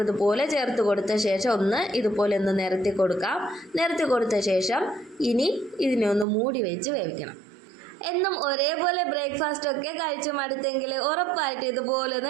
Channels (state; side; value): drops out; left; at 6.2 s